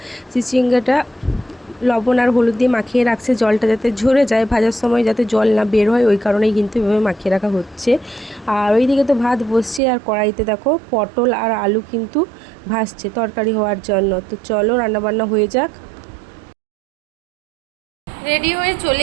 চিচিঙ্গাটা লবণ আর হলুদ দিয়ে মাখিয়ে রাখছে, জলটা যাতে ঝরে যায়, ভাজার সময় যাতে জল না বের হয়, ওই কারণেই কিন্তু এভাবে মাখিয়ে রাখা হচ্ছে। আর ওইদিকে তো ভাত বসছে, আর কড়াইতে দেখো পটল আর আলু কিন্তু ভাজছে তরকারি হওয়ার জন্য। তো চলো রান্নাবান্না হয়ে যাক। রেডি হয়ে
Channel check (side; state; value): left; drops out; at 9.8 s